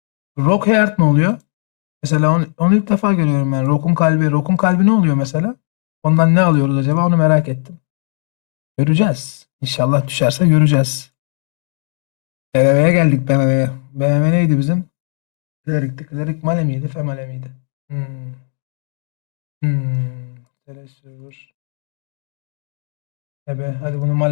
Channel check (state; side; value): silent; right; 61 dB below the other